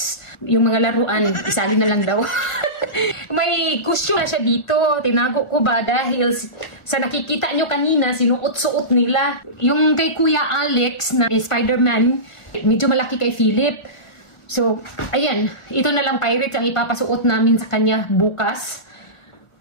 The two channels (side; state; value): right; late; 1.3 ms